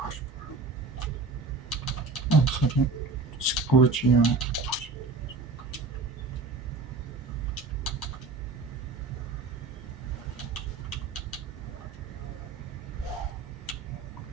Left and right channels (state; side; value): quieter; left; 4.0 dB